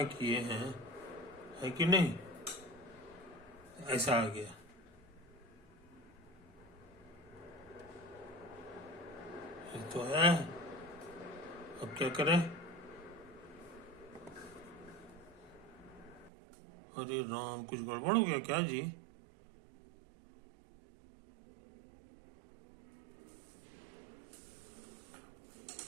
किए, हैं, है कि नहीं, ऐसा आ गया, ये तो है। अब क्या करें, अरे राम, कुछ गड़बड़ हो गया क्या जी?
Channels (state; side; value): drops out; left; at 16.3 s